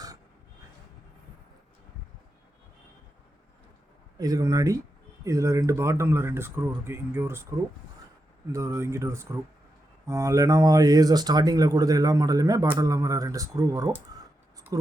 இதுக்கு முன்னாடி இதில் பாட்டமில் 2 ஸ்க்ரூ இருக்குது. இங்கே ஒரு ஸ்க்ரூ, இங்கிட்ட ஒரு ஸ்க்ரூ. லெனோவோ ஏசர் ஸ்டார்டிங்கில் கொடுத்த எல்லா மாடலுமே பாட்டம் இல்லாமல் 2 ஸ்க்ரூ வரும்.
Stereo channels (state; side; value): normal; both; correlation 0.87